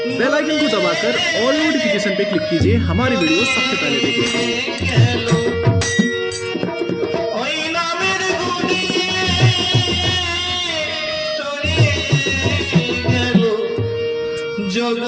बेल आइकन को दबाकर ऑल नोटिफिकेशन पे क्लिक कीजिए हमारी वीडियो सबसे पहले देखने के लिए। जग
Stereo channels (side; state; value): both; identical; correlation 1.00